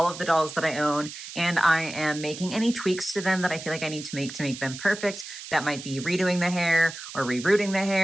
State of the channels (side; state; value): right; noise; hiss, 12 dB below the sound